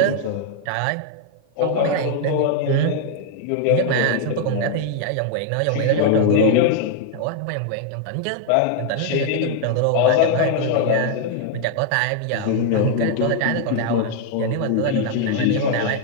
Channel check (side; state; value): both; different; correlation 0.00